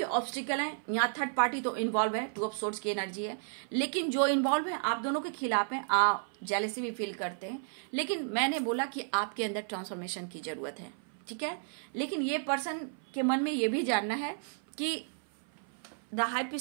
ऑब्स्टिकल है, यहाँ थर्ड पार्टी तो इन्वॉल्व है, 2 ऑफ सोर्ड्स की एनर्जी है, लेकिन जो इन्वॉल्व है आप दोनों के खिलाफ हैं, आप जेलसी भी फील करते हैं। लेकिन मैंने बोला कि आपके अंदर ट्रांसफॉर्मेशन की जरूरत है, ठीक है। लेकिन ये पर्सन के मन में ये भी जानना है कि द हाई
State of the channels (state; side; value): silent; left; 56 dB below the other